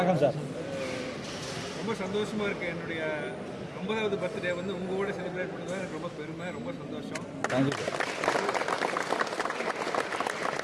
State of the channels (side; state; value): both; identical; correlation 1.00